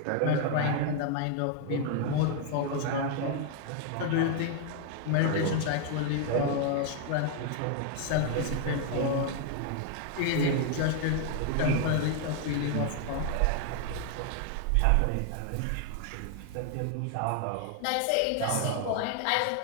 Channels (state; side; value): different; both; correlation 0.00